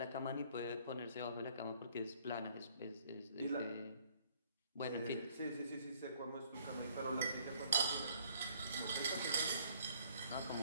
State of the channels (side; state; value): both; inverted; correlation -0.62